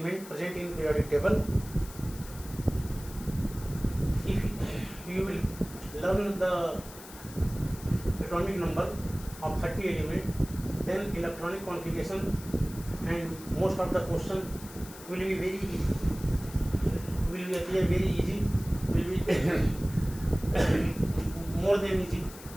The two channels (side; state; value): left; noise; hiss, 16 dB below the sound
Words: present in periodic table. If you will learn the atomic number of 30 element, then electronic configuration and most of the question will be very easy, will be appear very easy, will be more than easy